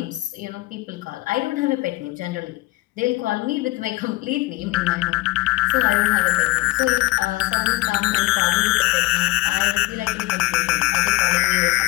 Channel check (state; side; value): quieter; right; 19.5 dB